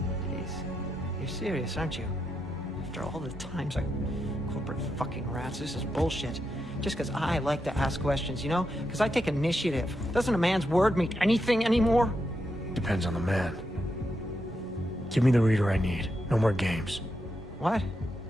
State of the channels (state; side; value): normal; both; correlation 0.84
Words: Jeez. You're serious, aren't you? After all the times corporate fucking rats, this is bullshit. Just because I like to ask questions, you know? Because I take initiative. Doesn't a man's word mean anything anymore? Depends on the man. Give me the reader I need. No more games. What?